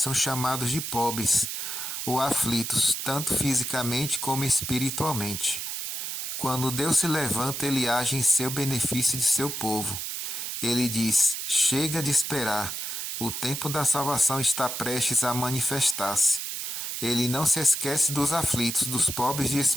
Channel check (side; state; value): right; noise; hiss, 4 dB below the sound